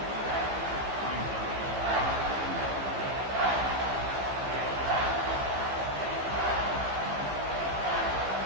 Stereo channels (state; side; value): late; left; 15 ms